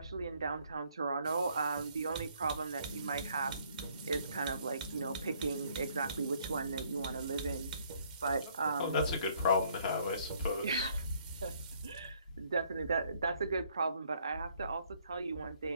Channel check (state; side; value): inverted; both; correlation -0.65